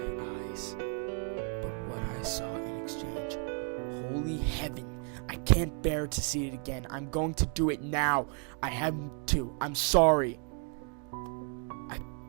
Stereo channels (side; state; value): left; quieter; 39.2 dB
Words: eyes, but what I saw in exchange, holy heaven, I can't bear to see it again. I'm going to do it now. I have to. I'm sorry. I